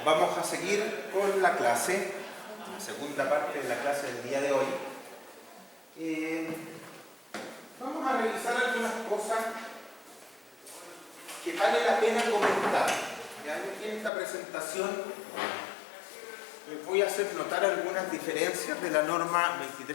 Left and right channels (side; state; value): right; drops out; at 14.1 s